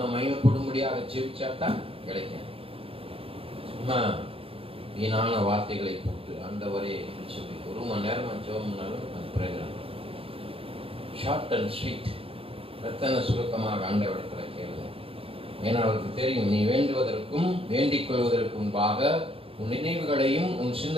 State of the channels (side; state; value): left; late; 0.27 ms